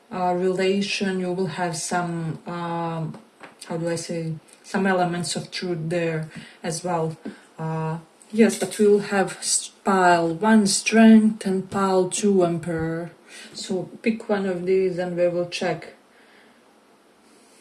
relation. You will have some how do I say, some elements of truth there as well. Yes, but we'll have pile 1 strength and pile 2 emperor. So pick one of these and we will check.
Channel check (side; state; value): both; identical; correlation 1.00